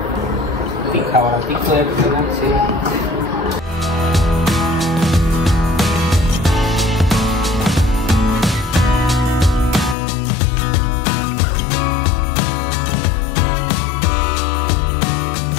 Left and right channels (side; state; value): right; drops out; at 10.0 s